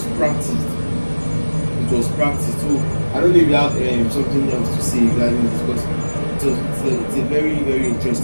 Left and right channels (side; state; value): both; inverted; correlation -1.00